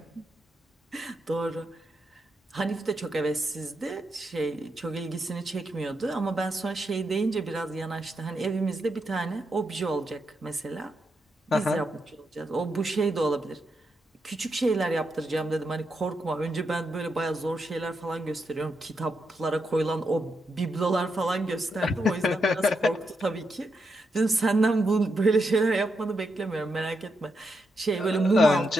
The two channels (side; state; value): both; normal; correlation 0.83